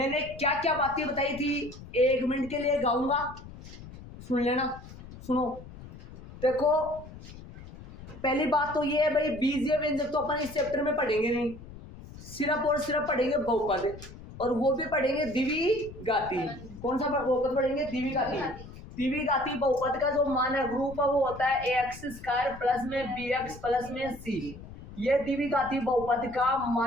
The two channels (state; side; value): noise; left; rumble, 16 dB below the sound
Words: क्या क्या बातें बताई थी 1 मिनट के लिए गाऊंगा, सुन लेना। सुनो, देखो पहली बात तो ये है भाई, बीजीय व्यंजक तो अपन इस चैप्टर में पढ़ेंगे नहीं, सिर्फ और सिर्फ पढ़ेंगे बहुपद, और वो भी पढ़ेंगे द्विघाती। कौन सा बहुपद पढ़ेंगे? द्विघाती। द्विघाती बहुपद का जो मानक रूप है वो होता है ax² प्लस में bx प्लस में c। ये द्विघाती बहुपद का